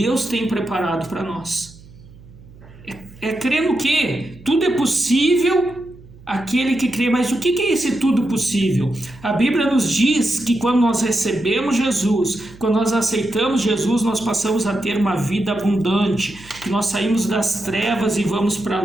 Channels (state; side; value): noise; right; hum, 22 dB below the sound